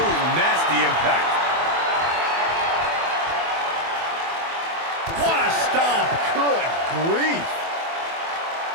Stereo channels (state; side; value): late; left; 24 ms